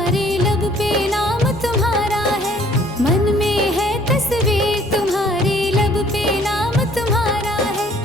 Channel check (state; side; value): normal; both; correlation 0.58